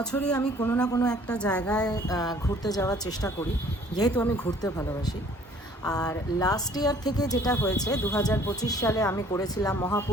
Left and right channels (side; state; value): both; normal; correlation 0.55